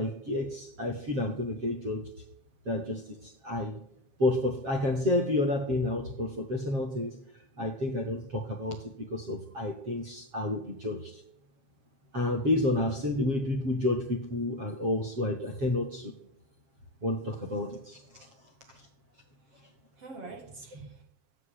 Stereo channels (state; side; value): late; left; 7.4 ms